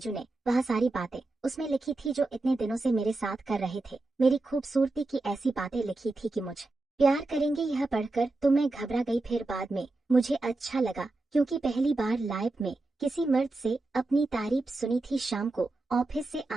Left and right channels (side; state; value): left; quieter; 3.0 dB